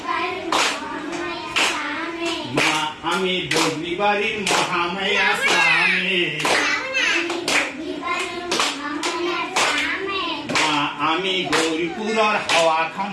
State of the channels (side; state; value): both; identical; correlation 1.00